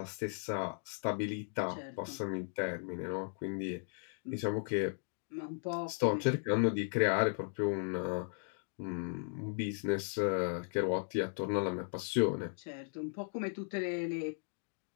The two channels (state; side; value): silent; right; digital silence